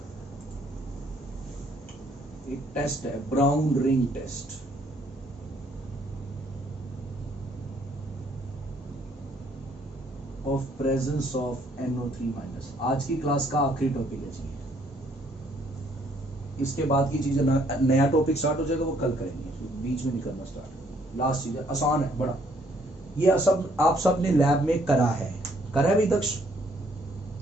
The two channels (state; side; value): normal; both; correlation 0.66